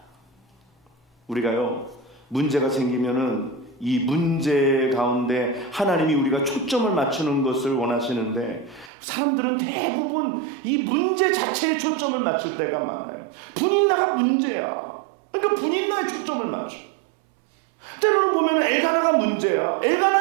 우리가요, 문제가 생기면은 이 문제 가운데 하나님이 우리가 초점을 맞추는 것을 원하시는데, 사람들은 대부분 이 문제 자체에 초점을 맞출 때가 많아요. 분인나가 문제야. 그러니까 분인나에 초점을 맞춰. 때로는 보면 엘가나가 문제야.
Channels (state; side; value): drops out; left; at 8.9 s